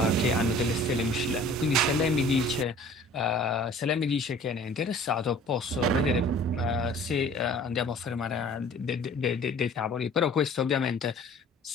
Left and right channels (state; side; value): normal; both; correlation 0.48